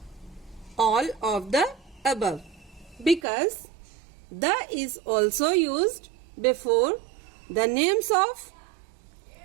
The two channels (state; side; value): drops out; left; at 3.2 s